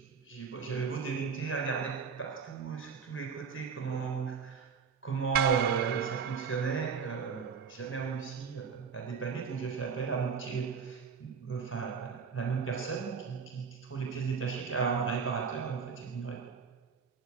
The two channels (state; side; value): quieter; left; 6.1 dB